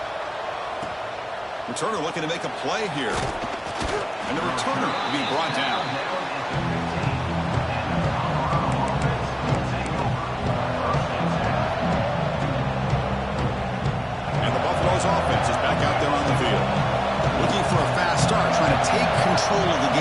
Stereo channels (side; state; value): both; identical; correlation 1.00